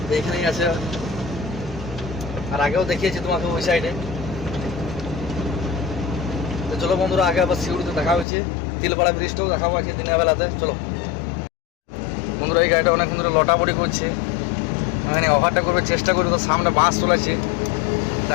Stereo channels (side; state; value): right; drops out; at 8.2 s